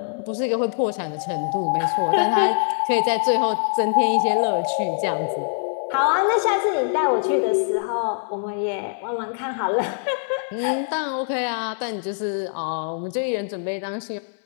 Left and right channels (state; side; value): silent; right; 63 dB below the other